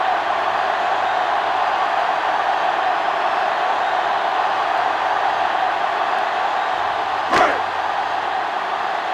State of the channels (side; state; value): both; identical; correlation 1.00